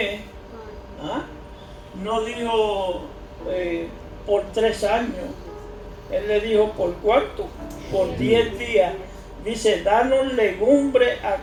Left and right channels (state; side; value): identical; both; correlation 1.00